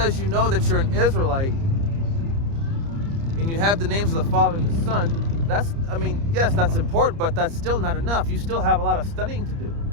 you know that you're an Israelite and you have the names of the Father and the Son, that's, I mean, yes, that's important, but that's still not enough. You still have a lot of studying to do.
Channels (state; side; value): late; left; 30 ms